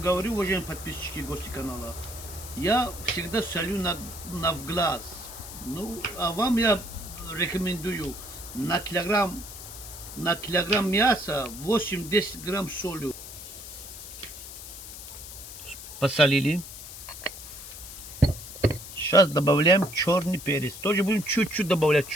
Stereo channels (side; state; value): left; noise; hiss, 12 dB below the sound